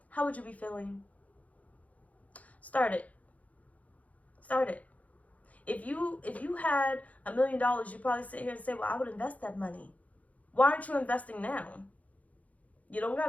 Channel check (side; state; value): right; late; 0.070 ms